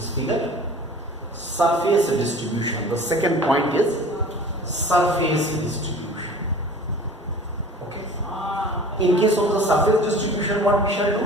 figure. Surface distribution, the second point is surface distribution. Okay. In case of the surface distribution, what we shall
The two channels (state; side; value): normal; both; correlation 0.43